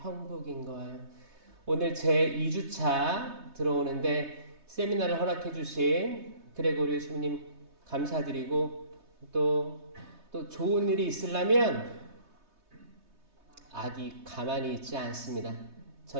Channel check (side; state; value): left; late; 3.2 ms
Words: 거예요. 오늘 제 2주차 들어오는데 세미나를 허락해 주신 그레고리 주님 감사드리고 또 좋은 일이 있으려면 악이 가만히 있지 않습니다.